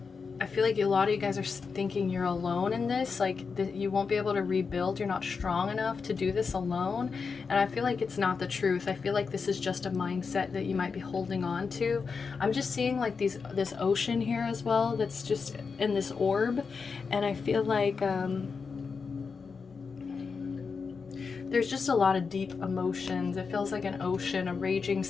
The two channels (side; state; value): right; quieter; 5.2 dB